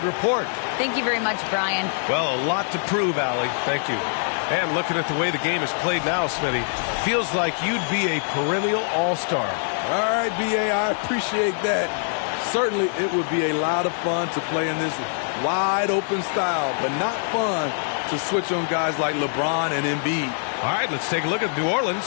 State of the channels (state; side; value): silent; right; 63 dB below the other